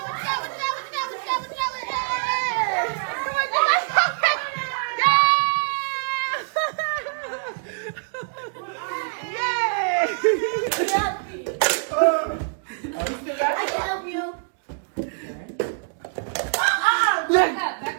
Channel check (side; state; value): left; silent; digital silence